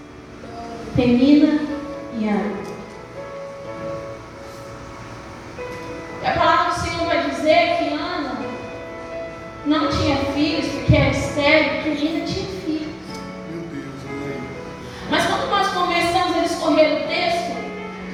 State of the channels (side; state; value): both; identical; correlation 1.00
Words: Penina e Ana. E a palavra do Senhor vai dizer que Ana não tinha filhos porque era estéril, porque Penina tinha filhos.